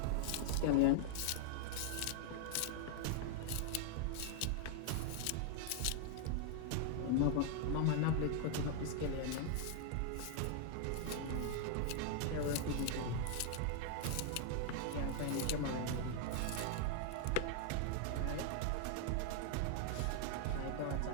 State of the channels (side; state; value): both; different; correlation 0.00